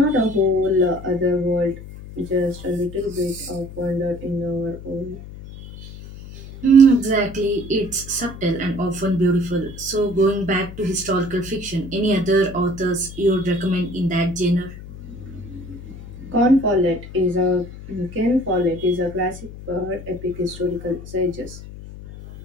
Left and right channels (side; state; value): left; noise; hum, 14 dB below the sound